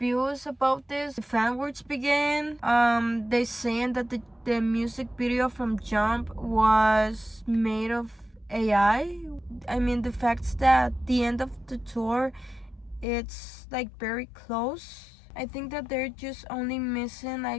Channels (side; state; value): right; drops out; at 13.1 s